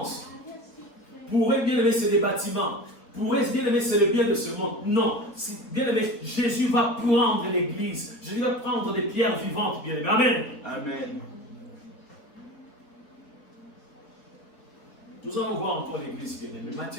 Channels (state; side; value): late; right; 4.0 ms